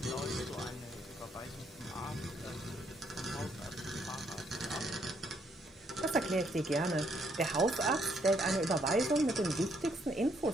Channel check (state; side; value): normal; both; correlation 0.71